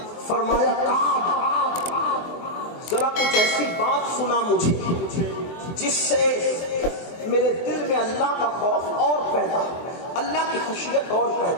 فرمایا کعب ذرا کچھ ایسی بات سنا مجھے جس سے میرے دل میں اللہ کا خوف اور پیدا, اللہ کی خشیت اور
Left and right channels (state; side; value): late; right; 23 ms